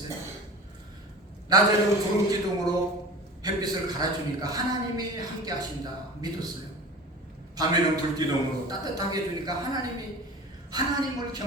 낮에는 구름 기둥으로 햇빛을 갈아주니까 하나님이 함께 하신다. 믿었어요. 밤에는 불기둥으로 따뜻하게 해주니까 하나님을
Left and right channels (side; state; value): both; normal; correlation 0.36